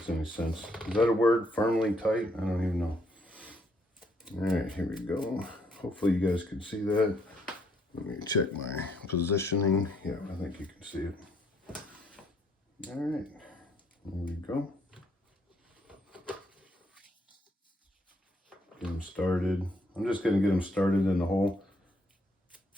any sense. Is that a word? Firmly tight? I don't even know. All right, here we go. Hopefully you guys can see that. Let me check my positioning. Yeah, I think you can see it. All right, here we go. Get them started. I'm just going to get them started in the hole.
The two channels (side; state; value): both; normal; correlation 0.70